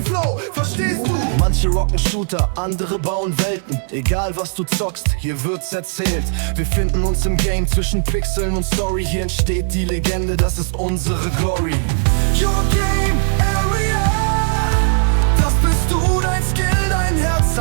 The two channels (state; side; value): silent; left; 61 dB below the other